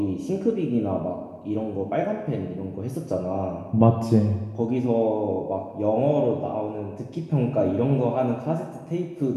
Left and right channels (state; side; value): identical; both; correlation 1.00